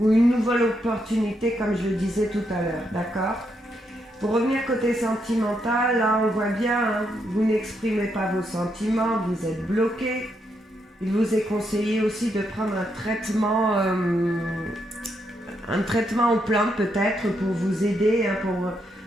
une nouvelle opportunité, comme je le disais tout à l'heure, d'accord ? Pour revenir côté sentimental, là on voit bien, hein, vous n'exprimez pas vos sentiments, vous êtes bloqué. Il vous est conseillé aussi de prendre un traitement aux plantes peut-être pour vous aider, hein,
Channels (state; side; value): normal; both; correlation 0.79